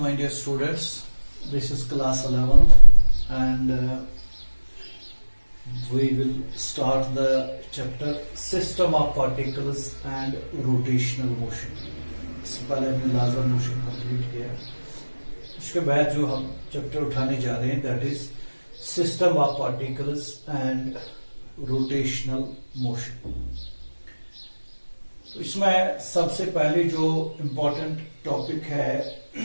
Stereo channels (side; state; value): both; inverted; correlation -1.00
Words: my dear students. This is class 11th and we will start the chapter System of Particles and Rotational Motion. इससे पहले हमने लाजर motion complete किया. उसके बाद जो हम चैप्टर उठाने जा रहे हैं that is system of particles and rotational motion. इसमें सबसे पहले जो इम्पोर्टेंट टॉपिक है